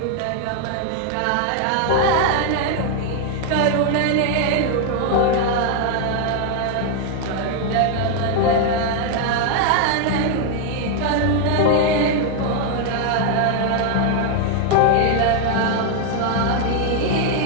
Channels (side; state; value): both; different; correlation 0.00